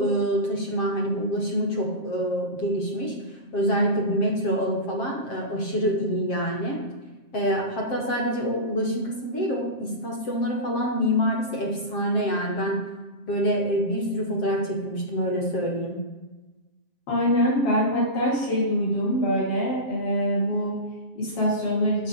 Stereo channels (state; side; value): late; right; 7.6 ms